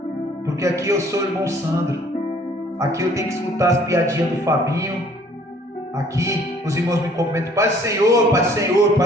Porque aqui eu sou o irmão Sandro. Aqui eu tenho que escutar as piadinhas do Fabinho. Aqui os irmãos me cumprimentam: Pai do Senhor, Pai do Senhor,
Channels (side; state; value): both; normal; correlation 0.57